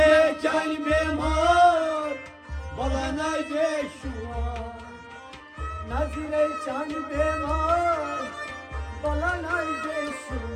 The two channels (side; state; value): both; identical; correlation 1.00